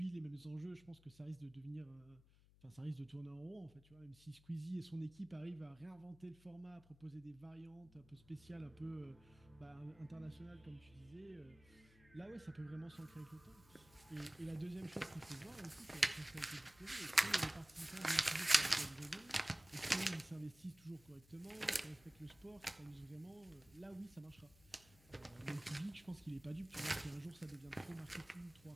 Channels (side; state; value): left; noise; hum, 25 dB below the sound